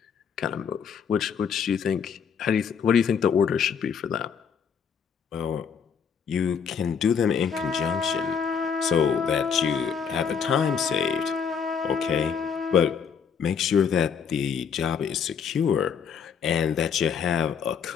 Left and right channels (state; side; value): quieter; right; 6.8 dB